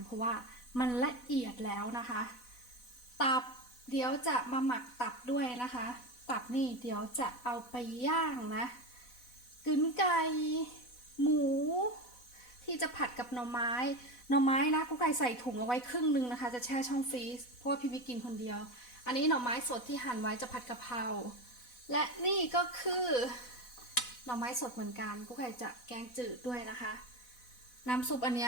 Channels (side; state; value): right; late; 4.1 ms